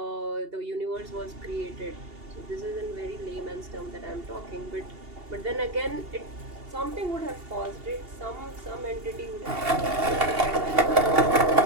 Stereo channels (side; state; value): left; late; 2.8 ms